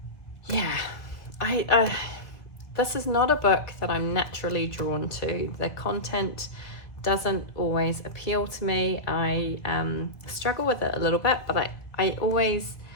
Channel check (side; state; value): right; late; 2.1 ms